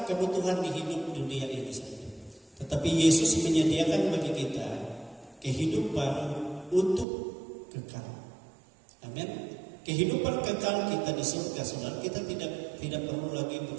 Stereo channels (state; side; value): drops out; left; at 7.1 s